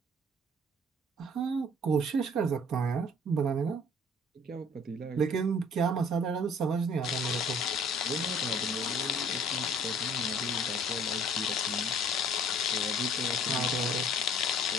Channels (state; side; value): normal; both; correlation 0.54